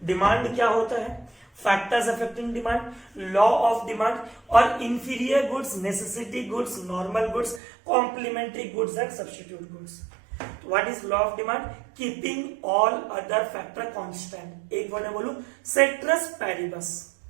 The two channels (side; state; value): left; drops out; at 7.6 s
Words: डिमांड क्या होता है, factors affecting demand, law of demand, और inferior goods, necessity goods, normal goods, complementary goods and substitute goods. What is law of demand? Keeping all other factor constant. एक वर्ड में बोलूं, ceteris paribus.